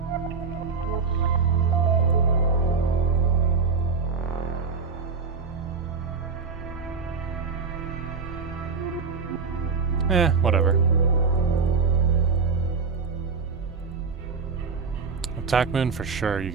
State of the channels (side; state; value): left; quieter; 4.9 dB